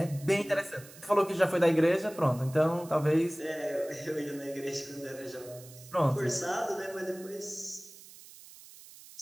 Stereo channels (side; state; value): right; noise; hiss, 19 dB below the sound